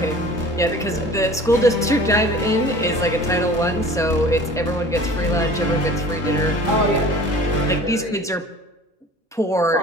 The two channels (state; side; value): normal; both; correlation 0.44